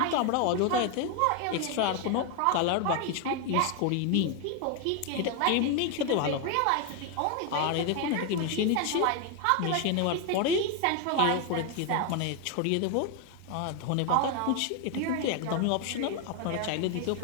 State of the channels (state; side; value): different; both; correlation 0.01